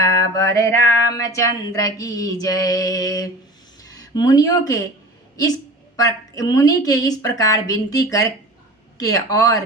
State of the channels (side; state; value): both; normal; correlation 0.38